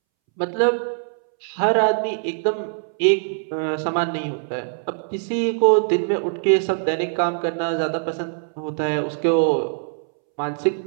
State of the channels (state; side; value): silent; left; 64 dB below the other